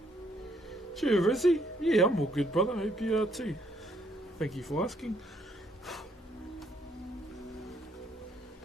Cheer, Rizzy. Yeah, I'm all good, brother. Hope you are too. Thank you for asking.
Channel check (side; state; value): both; normal; correlation 0.69